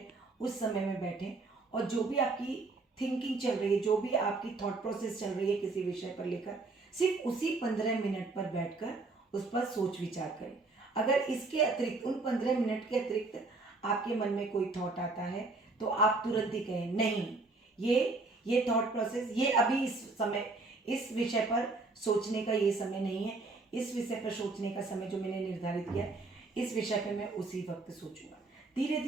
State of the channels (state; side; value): quieter; left; 3.5 dB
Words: उस समय में बैठें, और जो भी आपकी थिंकिंग चल रही है, जो भी आपकी थॉट प्रोसेस चल रही है किसी विषय पर लेकर, सिर्फ उसी 15 मिनट पर बैठकर उस पर सोच विचार करें। अगर इसके अतिरिक्त, उन 15 मिनट के अतिरिक्त आपके मन में कोई थॉट आता है, तो आप तुरंत ही कहें, नहीं, ये थॉट प्रोसेस, ये अभी इस समय इस विषय पर सोचने का ये समय नहीं है, इस विषय पर सोचने का समय जो मैंने निर्धारित किया, इस विषय पर मैं उसी वक्त सोचूंगा। धीरे